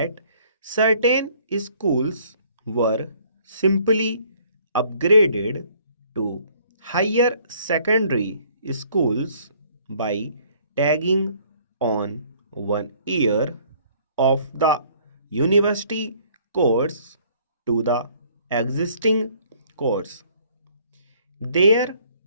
certain schools were simply upgraded to higher secondary schools by tagging on 1 year of the university course to the existing course. There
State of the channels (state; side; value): inverted; both; correlation -0.60